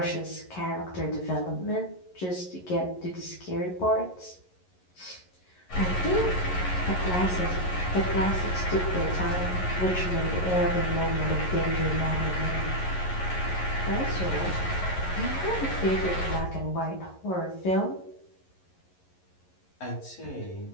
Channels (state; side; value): late; right; 11 ms